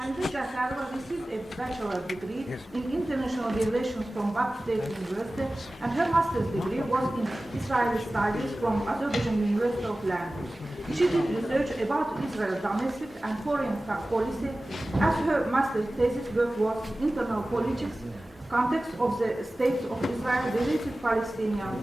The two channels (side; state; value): both; normal; correlation 0.97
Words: Jafarova received a bachelor's degree in international relations from Bakü State University, and her master's degree was in Israeli studies from Azerbaijan University of Language. She did research about Israel's domestic and foreign policy, as her master's thesis work was internal politics, context of the state of Israel related Palestinian